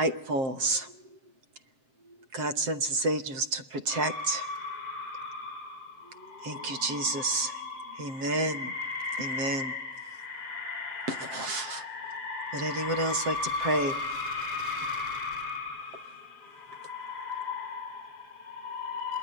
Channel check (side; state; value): left; late; 7.6 ms